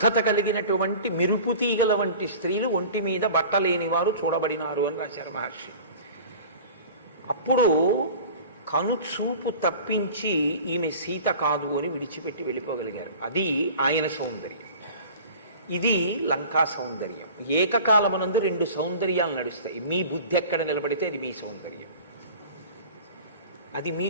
కలిగినటువంటి మెరుపుతీగల వంటి స్త్రీలు ఒంటి మీద బట్టలేని వారు చూడబడినారు అని రాశారు మహర్షి. అప్పుడు కనుచూపు తప్పించి ఈమె సీత కాదు అని విడిచిపెట్టి వెళ్ళిపోగలిగారు. అది ఆయన సౌందర్యం. ఇది లంకా సౌందర్యం. ఏకకాలమునందు రెండు సౌందర్యాలు నడుస్తాయి. మీ బుద్ధి ఎక్కడ నిలబడితే అది మీ సౌందర్యం. అది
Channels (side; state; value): both; inverted; correlation -0.41